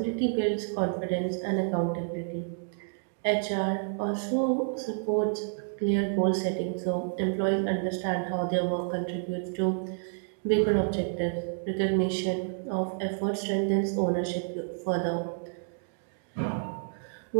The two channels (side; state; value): left; silent; digital silence